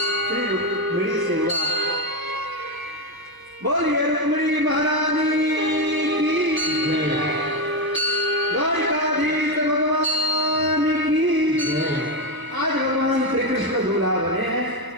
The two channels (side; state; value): left; late; 1.0 ms